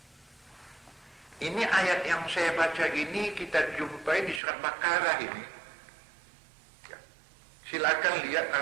Ini ayat yang saya baca ini kita jumpai di surat Baqarah ini. Silakan lihat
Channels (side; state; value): left; drops out; at 4.4 s